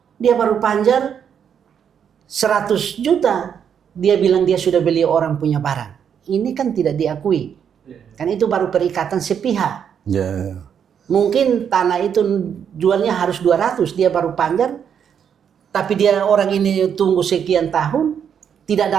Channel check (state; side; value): quieter; left; 8.0 dB